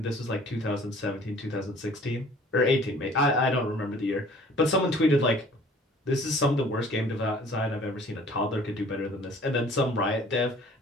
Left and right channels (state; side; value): normal; both; correlation 0.52